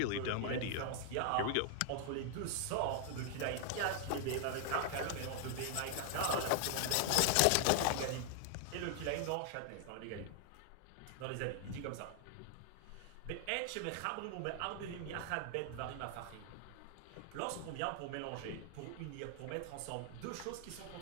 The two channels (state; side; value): different; both; correlation 0.00